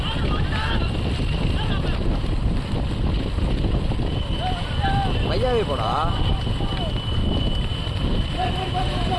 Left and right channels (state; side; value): identical; both; correlation 1.00